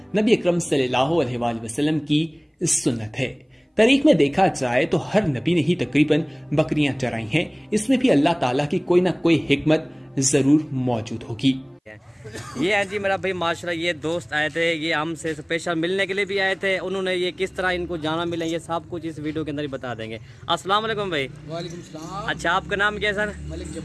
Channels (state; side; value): identical; both; correlation 1.00